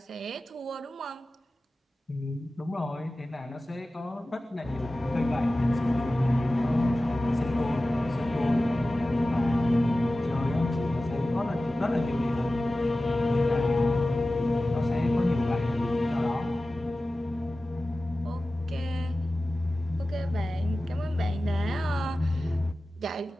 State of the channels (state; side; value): normal; both; correlation 0.96